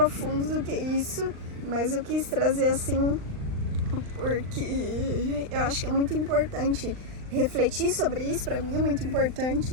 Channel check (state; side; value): late; left; 39 ms